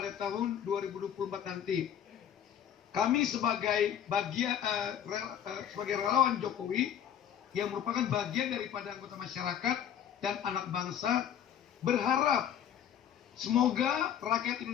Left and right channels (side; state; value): right; quieter; 9.5 dB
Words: tahun 2024 nanti. Kami sebagai relawan Jokowi yang merupakan bagian daripada anggota masyarakat dan anak bangsa berharap semoga rakyat